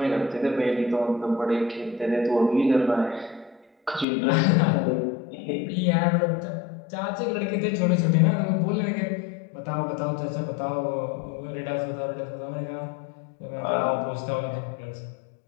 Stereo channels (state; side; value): drops out; right; at 4.0 s